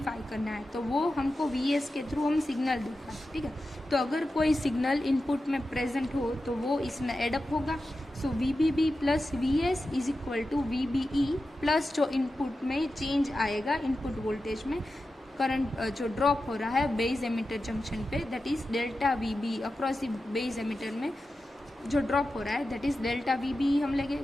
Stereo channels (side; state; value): both; normal; correlation 0.92